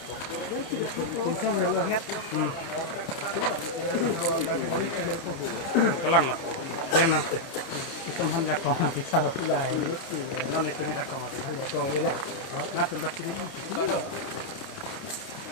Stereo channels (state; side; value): late; right; 29 ms